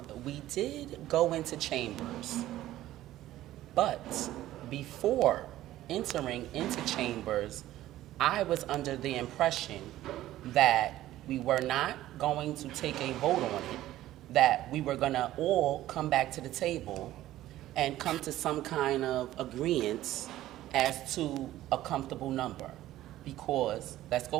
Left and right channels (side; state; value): left; quieter; 14.5 dB